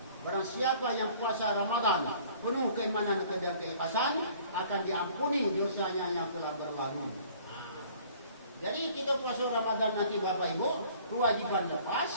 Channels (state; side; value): inverted; both; correlation -0.53